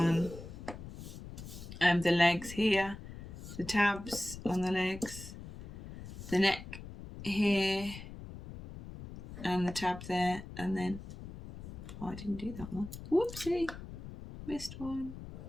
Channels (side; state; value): left; noise; rumble, 12 dB below the sound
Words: The legs here, the tabs on the legs, the neck here, and the tab there, and then, oh, I didn't do that one. Whoopsie, missed one.